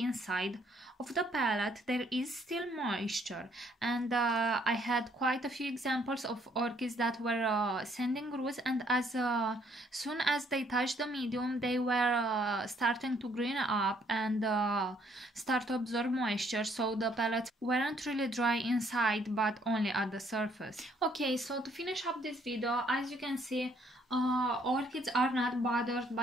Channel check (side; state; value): both; normal; correlation 0.66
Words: of the pellet there is still moisture, and I had quite a few examples of orchids that were sending roots, and as soon as they touched the medium they were starting to green up and start to absorb moisture, so the pellets weren't really dry inside but only at the surface. Okay, so to finish up this video, as you can see, orchids are not bothered